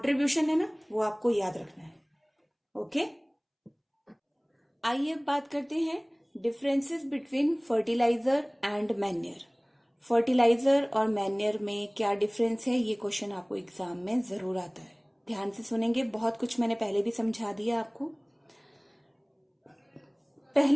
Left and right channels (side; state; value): both; identical; correlation 1.00